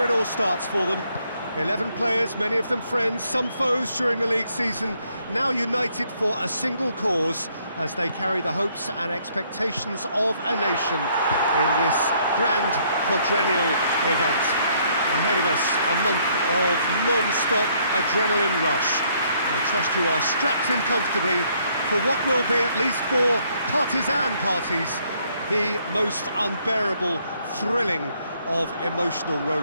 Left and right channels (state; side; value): inverted; both; correlation -0.68